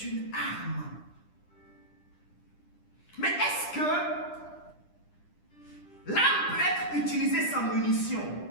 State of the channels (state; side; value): late; right; 10 ms